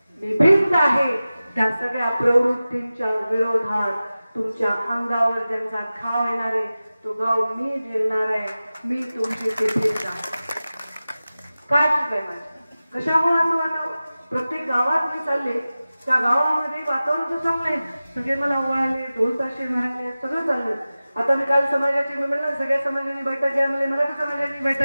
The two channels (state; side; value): inverted; both; correlation -0.96